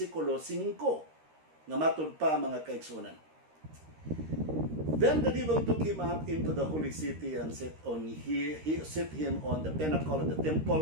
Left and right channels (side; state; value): left; late; 13 ms